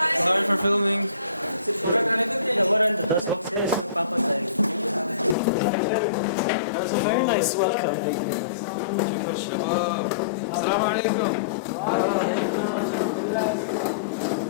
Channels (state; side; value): drops out; right; at 5.4 s